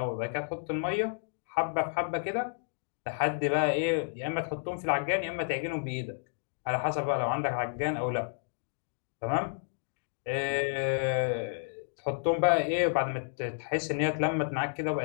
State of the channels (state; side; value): silent; right; digital silence